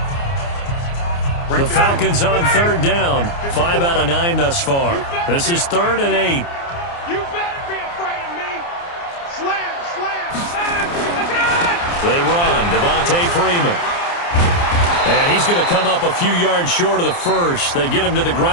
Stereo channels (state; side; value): late; right; 29 ms